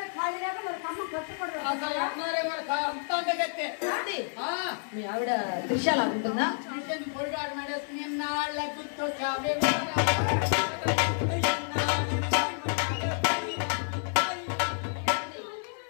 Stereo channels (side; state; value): right; silent; 58 dB below the other